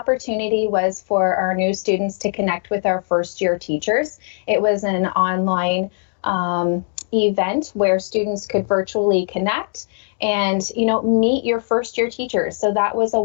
was for our new students to connect with our first-year teachers. It was an online event where students could virtually connect and meet your first-year teachers. So that was a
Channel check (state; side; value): silent; right; digital silence